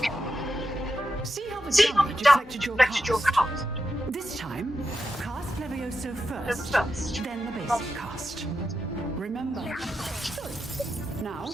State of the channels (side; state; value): both; normal; correlation 0.88